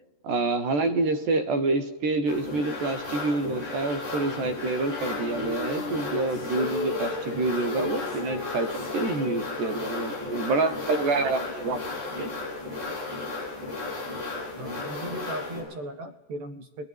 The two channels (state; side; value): late; left; 14 ms